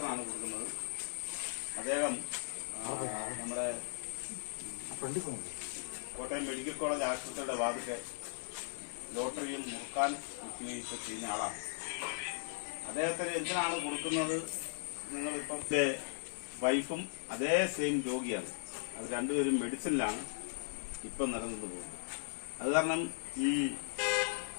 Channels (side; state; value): right; silent; digital silence